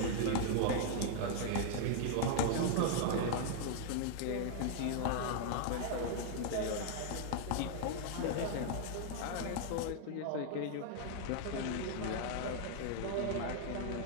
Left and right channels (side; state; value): both; different; correlation 0.00